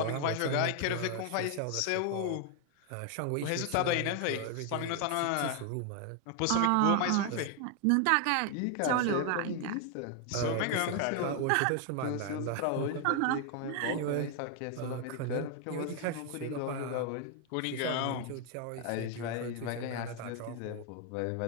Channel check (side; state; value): both; different; correlation 0.00